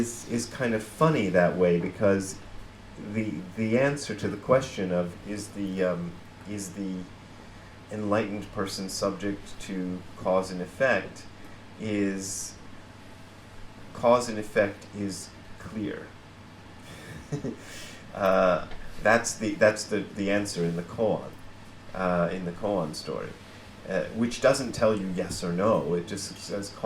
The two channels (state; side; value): identical; both; correlation 1.00